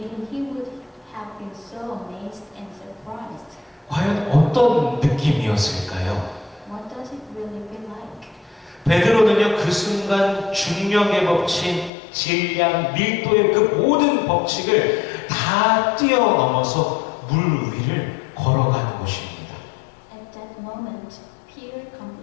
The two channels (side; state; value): right; drops out; at 11.9 s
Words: he would have been so amazed and surprised. 과연 어떤 느낌이었을까요? What does it really feel like? 베드로는요, 그 순간 중력의 법칙, 질량, 밀도의 그 모든 법칙을 다 뛰어넘어서 물 위를 걸어가는 것입니다. At that moment, Peter